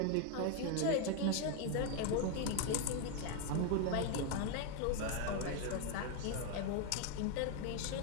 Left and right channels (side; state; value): both; different; correlation 0.01